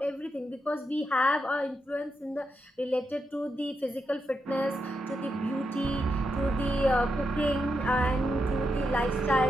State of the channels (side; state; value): both; normal; correlation 0.84